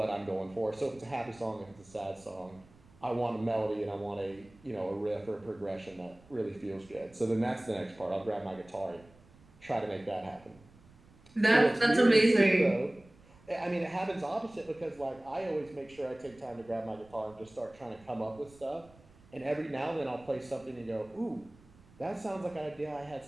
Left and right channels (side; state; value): right; noise; rumble, 26 dB below the sound